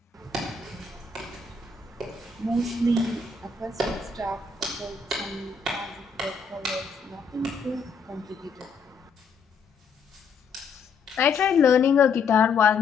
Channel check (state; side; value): quieter; right; 5.0 dB